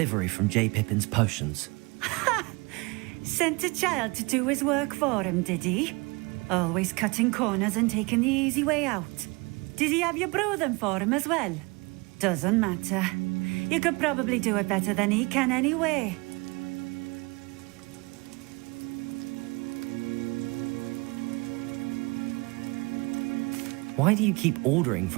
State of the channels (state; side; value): quieter; left; 27.2 dB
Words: from J. Pippin's potions. Sent a child to do his work for him, did he? Always cutting corners and taking the easy way out. Did he have you brew them for him as well? Doesn't matter. You could probably do it better than he can anyway. Why do you keep ordering